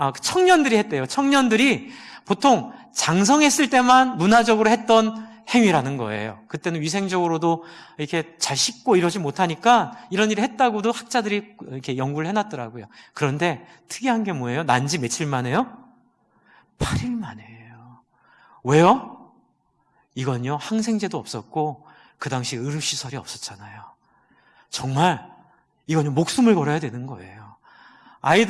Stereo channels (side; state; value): both; identical; correlation 1.00